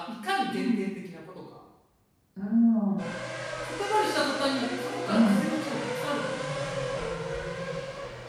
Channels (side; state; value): both; identical; correlation 1.00